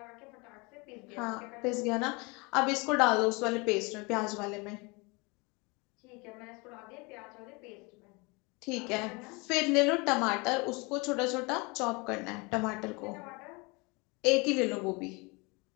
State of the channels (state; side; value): quieter; right; 27.8 dB